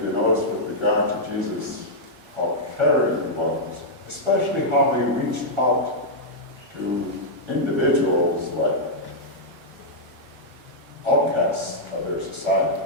you notice with regard to Jesus, how caring he was, especially how he reached out to individuals like outcasts of their society.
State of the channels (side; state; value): left; late; 1.3 ms